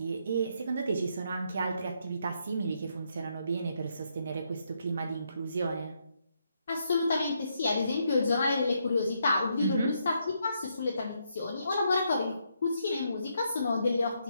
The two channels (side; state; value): both; inverted; correlation -0.77